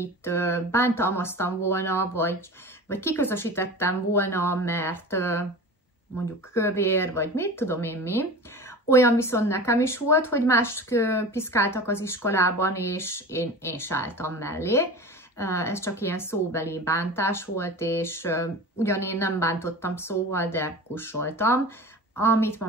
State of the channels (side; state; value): both; normal; correlation 0.34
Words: bántalmaztam volna, vagy kiközösítettem volna, mert mondjuk kövér, vagy mit tudom én mi. Olyan viszont nekem is volt, hogy más piszkáltak az iskolában, és én sálltam mellé. Ez csak ilyen szóbeli bántás volt, és ugyan én nem bántottam szóval, de kussoltam, amit ma